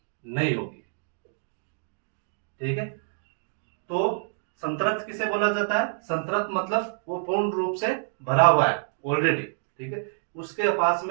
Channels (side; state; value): left; silent; digital silence